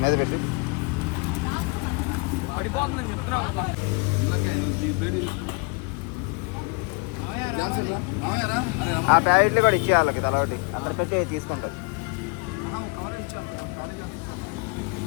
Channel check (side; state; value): right; quieter; 28.8 dB